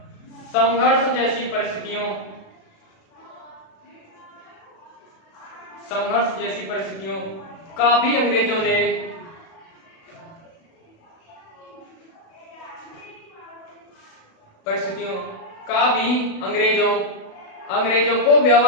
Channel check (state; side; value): late; right; 36 ms